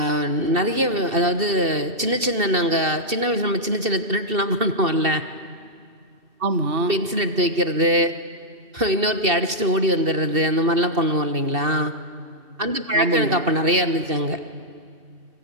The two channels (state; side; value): late; left; 2.7 ms